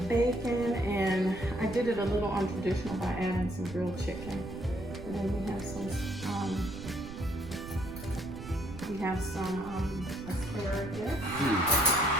bacon, and I did it a little untraditional by adding some grilled chicken. And then we have some asparagus.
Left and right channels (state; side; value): noise; right; rumble, 13 dB below the sound